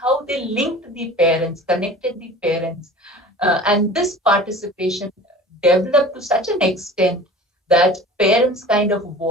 they linked the parents, connected the parents, and this participation developed to such an extent that parents kind of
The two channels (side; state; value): both; normal; correlation 0.41